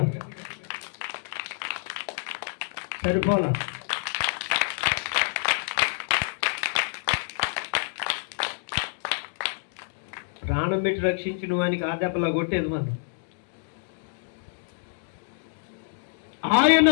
సరిపోలా. ప్రాణం పెట్టి రక్షించిన వానికి ఆ దెబ్బలా కొట్టేది మనం. ఆయన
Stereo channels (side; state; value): right; silent; digital silence